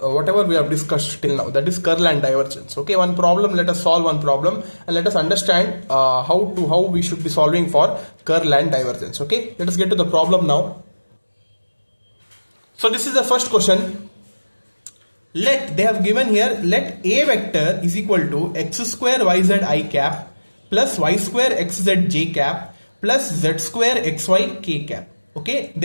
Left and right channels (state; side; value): inverted; both; correlation -1.00